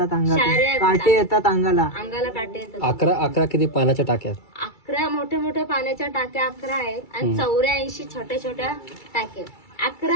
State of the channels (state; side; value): late; right; 2.3 ms